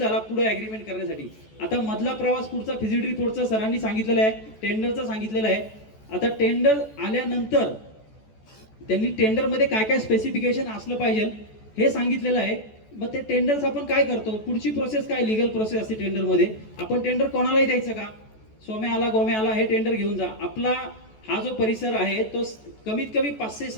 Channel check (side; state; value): right; late; 14 ms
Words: पुढे ॲग्रीमेंट करण्यासाठी. आता मधला प्रवास पुढचा फिजिबिलिटी रिपोर्टचा सरांनी सांगितलेला आहे, टेंडरचा सांगितलेला आहे. आता टेंडर आल्यानंतर त्यांनी टेंडरमध्ये काय काय स्पेसिफिकेशन असलं पाहिजे हे सांगितलेलं आहे. मग ते टेंडर्स आपण काय करतो, पुढची प्रोसेस काय, लिगल प्रोसेस असते टेंडरमध्ये. आपण टेंडर कोणालाही द्यायचं का? सोम्या आला गोम्या आला हे टेंडर घेऊन जा. आपला हा जो परिसर आहे तो कमीत कमी